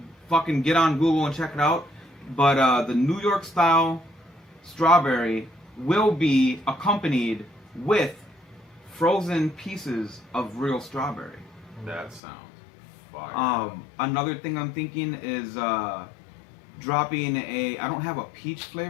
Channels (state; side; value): drops out; right; at 12.2 s